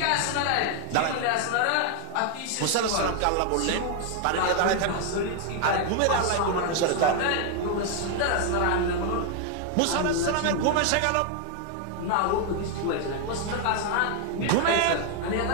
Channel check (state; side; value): different; both; correlation 0.00